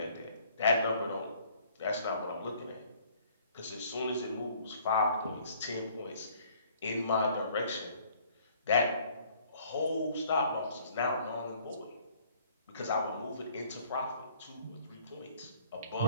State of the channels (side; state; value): both; inverted; correlation -0.58